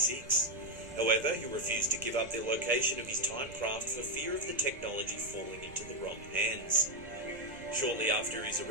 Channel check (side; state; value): right; noise; rumble, 19 dB below the sound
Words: However, he refused to give up the location of his time craft for fear of the technology falling into the wrong hands. Shortly after his